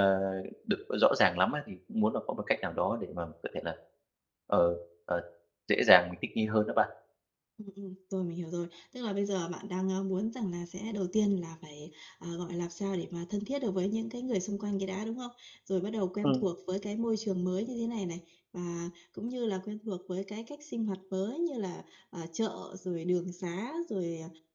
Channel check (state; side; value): identical; both; correlation 1.00